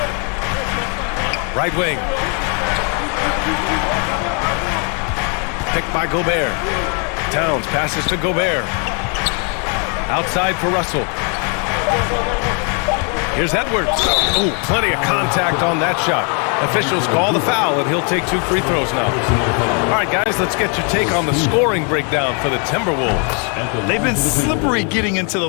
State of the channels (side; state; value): right; quieter; 38.2 dB